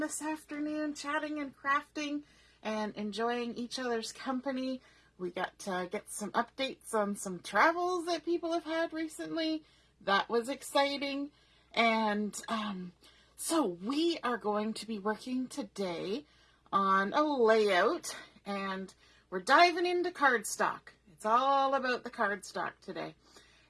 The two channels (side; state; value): both; identical; correlation 1.00